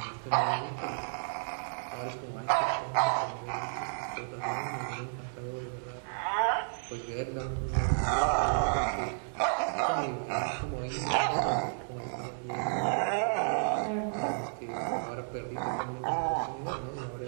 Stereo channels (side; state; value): left; silent; digital silence